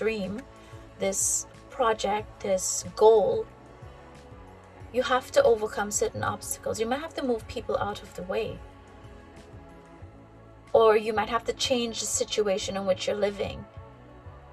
this project, this goal, you have to overcome certain obstacles. You might have to move people out of the way, or you might have to change the situation in which you're living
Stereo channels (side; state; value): both; identical; correlation 1.00